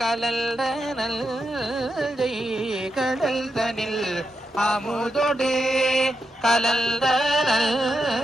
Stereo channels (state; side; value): normal; both; correlation 0.85